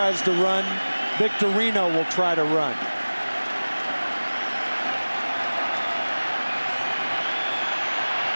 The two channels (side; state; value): both; inverted; correlation -1.00